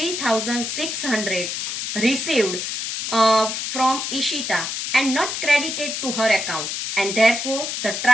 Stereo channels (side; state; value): left; noise; hiss, 3 dB below the sound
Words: received from Ishita and not credited to her account, and therefore the